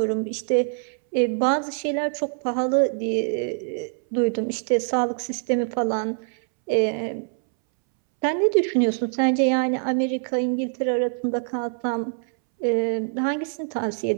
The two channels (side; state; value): left; silent; 62 dB below the other